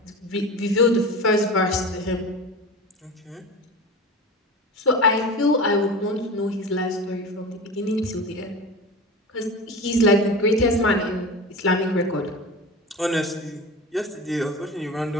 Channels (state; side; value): normal; both; correlation 0.30